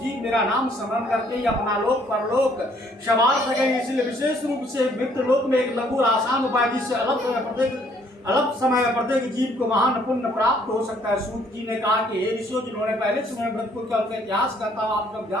मेरा नाम स्मरण करके ही अपना लोक परलोक संवार सके। इसलिए विशेष रूप से मृत्यु लोक में एक लघु आसान उपाय जिससे अल्प समय में प्रत्येक जीव को महान पुण्य प्राप्त हो सकता है। सूत जी ने कहा कि हे ऋषियों जिन्होंने पहले समय व्रत को किया उनका इतिहास कहता हूँ आप लोग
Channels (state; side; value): normal; both; correlation 0.64